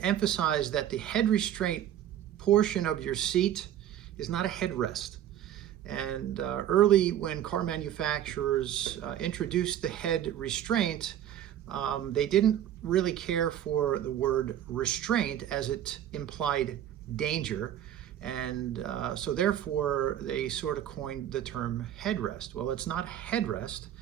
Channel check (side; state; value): left; quieter; 11.0 dB